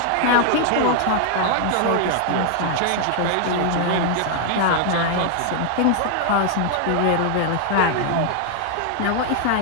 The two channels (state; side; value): different; both; correlation 0.00